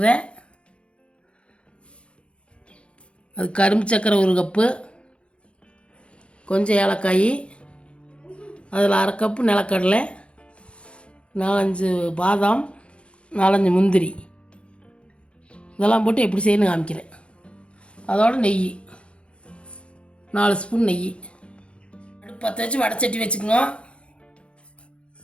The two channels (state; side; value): late; right; 0.059 ms